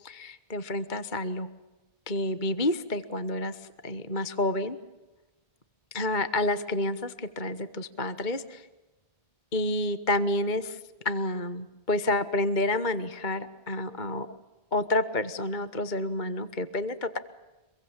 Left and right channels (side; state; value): right; late; 2.2 ms